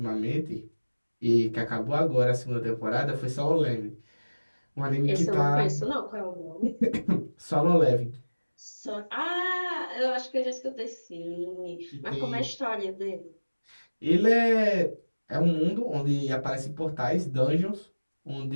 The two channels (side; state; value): both; inverted; correlation -1.00